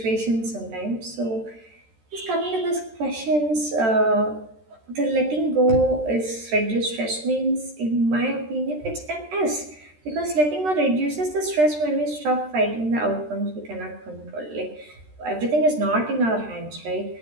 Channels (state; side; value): late; left; 13 ms